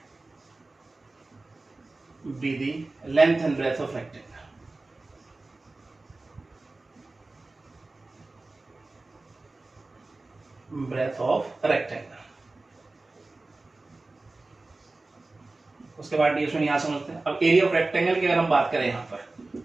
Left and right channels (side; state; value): left; quieter; 3.2 dB